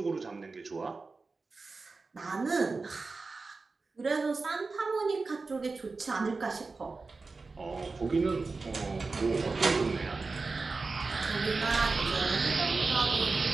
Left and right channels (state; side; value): quieter; left; 4.0 dB